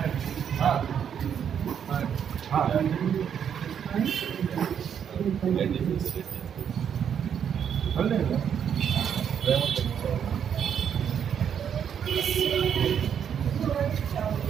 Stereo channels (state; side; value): quieter; left; 8.3 dB